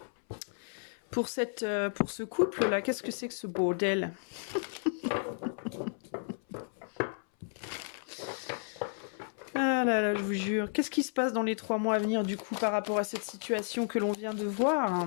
Pour ce couple-là, qu'est-ce que c'est que ce bordel? Ah là là, je vous jure. Qu'est-ce qui se passe dans les 3 mois à venir, du coup, par rapport à cette situation que l'on vient de voir?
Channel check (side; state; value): right; silent; 56 dB below the other